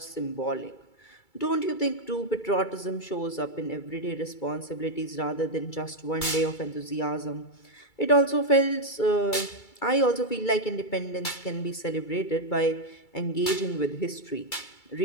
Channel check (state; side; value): late; right; 2.3 ms